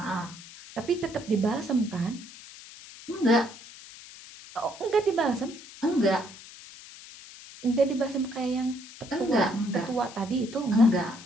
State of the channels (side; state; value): left; noise; hiss, 17 dB below the sound